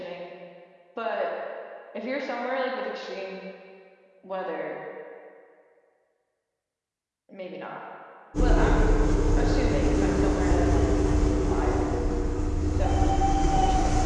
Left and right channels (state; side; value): identical; both; correlation 1.00